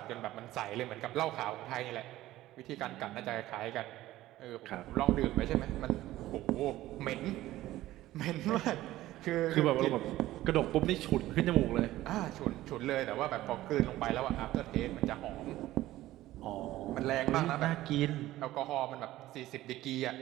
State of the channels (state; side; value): quieter; left; 15.6 dB